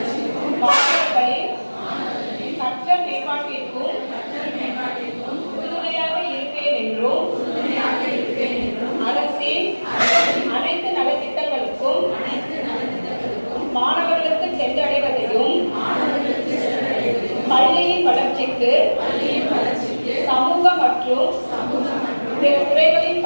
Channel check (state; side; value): inverted; both; correlation -1.00